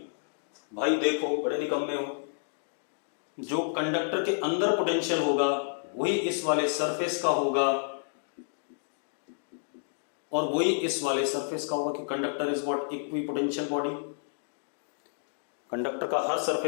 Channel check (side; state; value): right; silent; digital silence